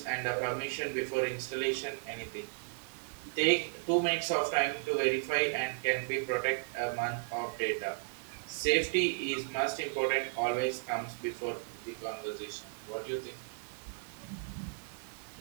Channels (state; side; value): silent; left; digital silence